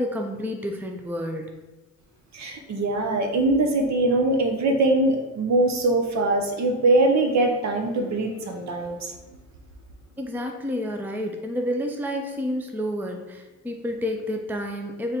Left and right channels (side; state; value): both; normal; correlation 0.10